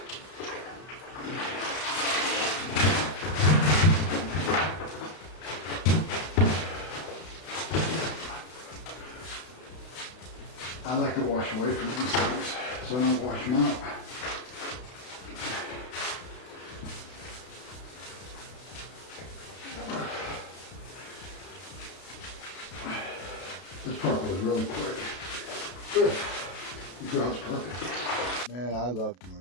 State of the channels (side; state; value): right; late; 32 ms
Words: I like to wash away from these things, so I don't wash them out. This part goes really quick. Good. The grout's perfect. Man, I love